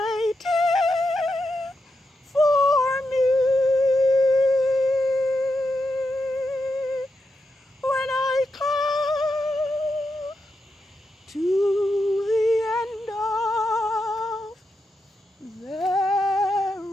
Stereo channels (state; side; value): normal; both; correlation 0.86